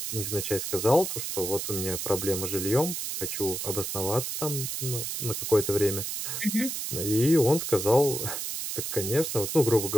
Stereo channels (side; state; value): right; noise; hiss, 4 dB below the sound